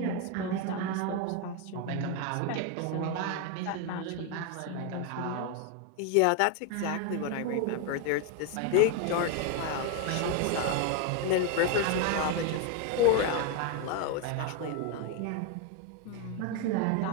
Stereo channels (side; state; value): both; different; correlation 0.01